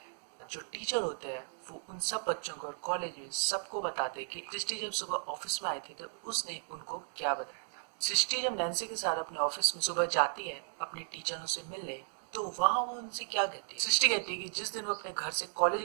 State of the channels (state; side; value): silent; left; digital silence